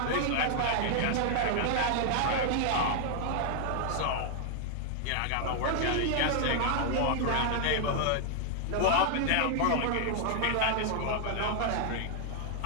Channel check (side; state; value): both; different; correlation 0.00